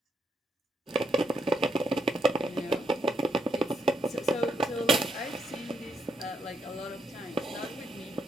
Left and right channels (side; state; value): both; normal; correlation 0.77